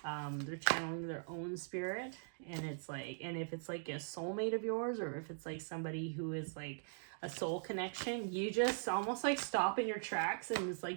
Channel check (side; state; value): left; silent; digital silence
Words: They're channeling their own spirit, and it's like, and if it's like a soulmate of yours, or if it's like somebody who is like a soul connection, you just almost like stop in your tracks, and it's